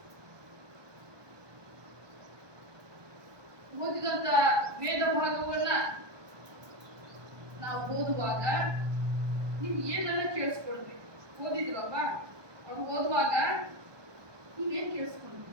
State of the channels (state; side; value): late; left; 1.2 ms